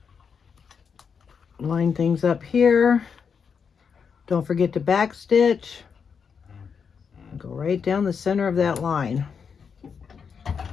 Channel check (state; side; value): quieter; right; 6.3 dB